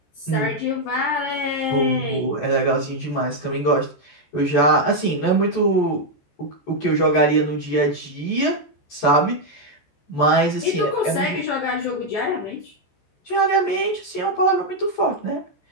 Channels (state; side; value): late; right; 14 ms